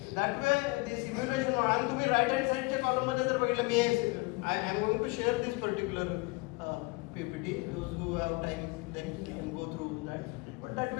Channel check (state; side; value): quieter; right; 25.7 dB